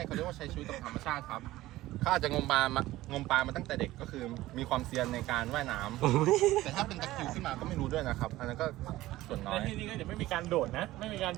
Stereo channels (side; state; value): left; quieter; 16.6 dB